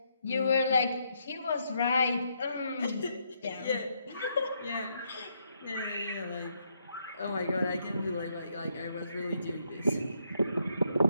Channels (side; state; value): both; inverted; correlation -0.76